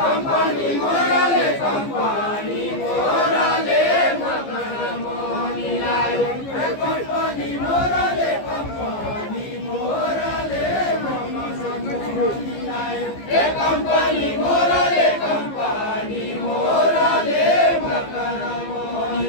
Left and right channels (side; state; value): right; late; 15 ms